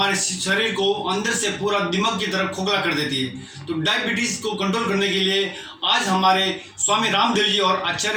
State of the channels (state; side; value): identical; both; correlation 1.00